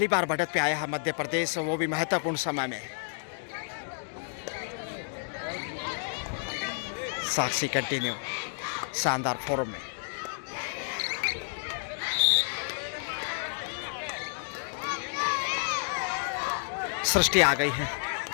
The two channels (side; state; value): right; silent; digital silence